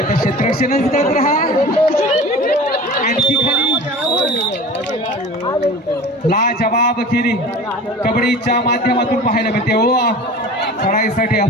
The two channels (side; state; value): both; normal; correlation 0.38